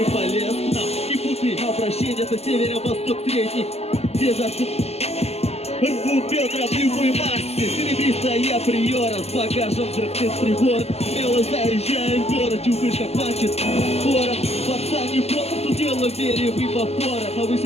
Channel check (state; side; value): late; right; 0.30 ms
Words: полез. Нам не путай обращение, это северо-восток средний. Где засып рвут бедра в любой массе. Серебристая приора с багажом взрывных прибор. Смело заезжаем в город, чувствуешь, как мачет город. Пацан не полностью дело вере в эвапора.